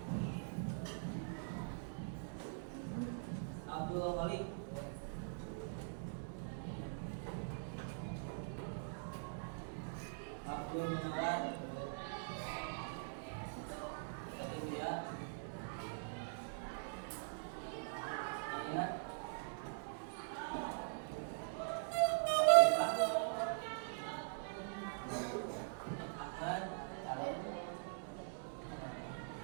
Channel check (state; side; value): silent; left; digital silence